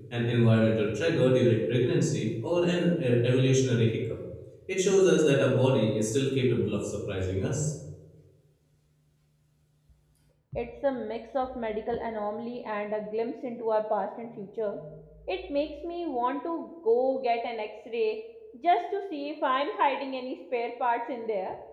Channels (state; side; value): identical; both; correlation 1.00